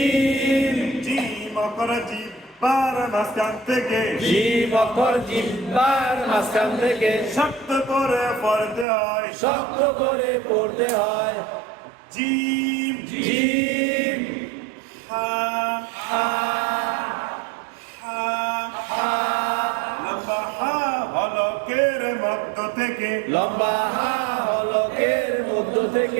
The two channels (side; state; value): left; drops out; at 8.8 s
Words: gym অক্ষর জিহ্বার মাঝখান থেকে জিম অক্ষর জিহ্বার মাঝখান থেকে শক্ত করে পড়তে হয় শক্ত করে পড়তে হয় জিম জিম হা হা হা হা লম্বা হা হলকের মধ্য থেকে লম্বা হা হলকের মধ্য